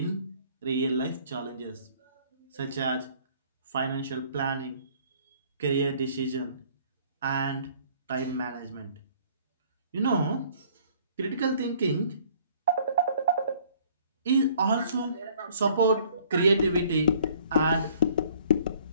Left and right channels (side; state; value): both; inverted; correlation -0.58